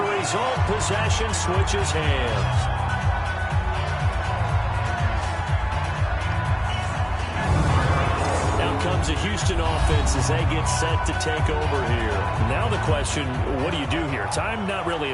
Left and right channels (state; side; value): identical; both; correlation 1.00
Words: result, possession switches hands. Comes a Houston offense as they get set to take over here. Now the question, what do you do here? Time not really